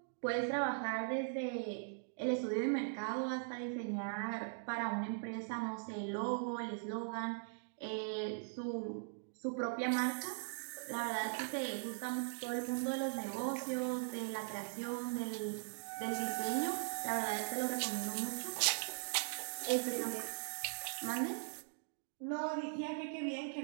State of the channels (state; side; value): silent; left; digital silence